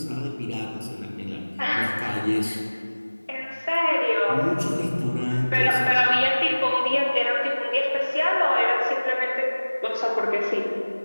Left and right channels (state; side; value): inverted; both; correlation -1.00